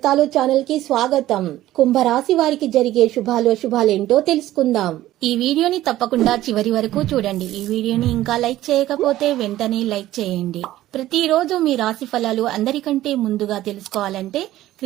ఛానల్ కి స్వాగతం. కుంభరాశి వారికి జరిగే శుభాలేంటో తెలుసుకుందాం. ఈ వీడియోని తప్పకుండా చివరి వరకు చూడండి. ఈ వీడియోని ఇంకా లైక్ చేయకపోతే వెంటనే లైక్ చేయండి. ప్రతిరోజు మీ రాశి ఫలాలు అందరికంటే ముందుగా తెలుసుకోవాలంటే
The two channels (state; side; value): quieter; left; 14.7 dB